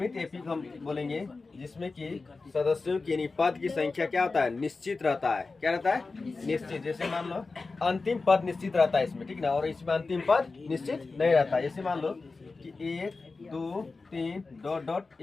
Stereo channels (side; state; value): right; quieter; 3.9 dB